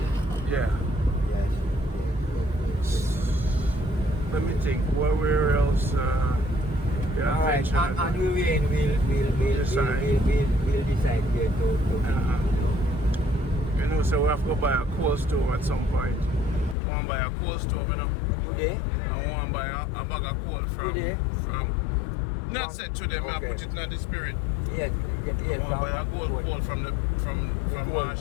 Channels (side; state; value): right; drops out; at 16.8 s